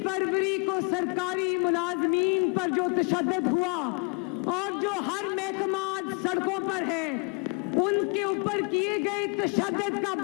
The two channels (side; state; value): right; quieter; 33.7 dB